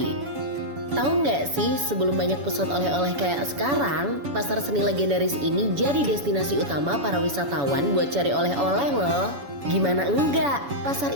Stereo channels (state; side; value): late; left; 7.1 ms